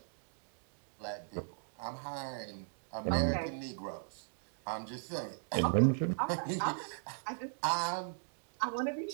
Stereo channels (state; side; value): silent; left; digital silence